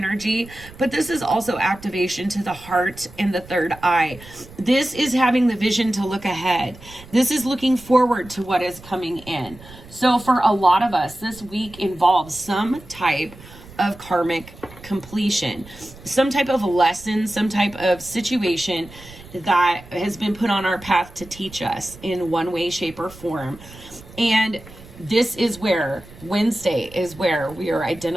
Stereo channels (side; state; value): right; noise; rumble, 19 dB below the sound